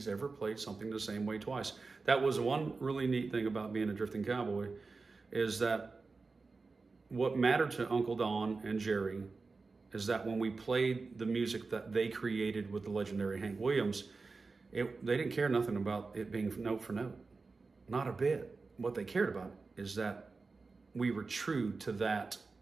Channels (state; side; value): quieter; left; 4.1 dB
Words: ever played something the same way twice. That was one really neat thing about being a drifting cowboy, is that what mattered to Uncle Don and Jerry is that when we played the music that they created with the legendary Hank Williams, they didn't care nothing about it being note for note. Not a bit. What they cared about is that we were true to that